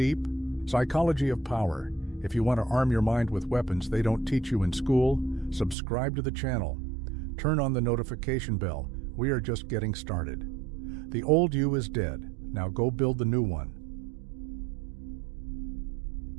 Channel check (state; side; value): drops out; left; at 5.8 s